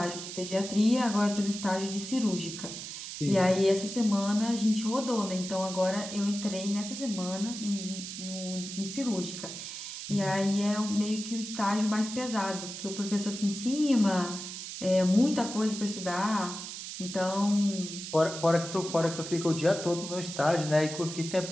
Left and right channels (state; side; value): noise; right; hiss, 8 dB below the sound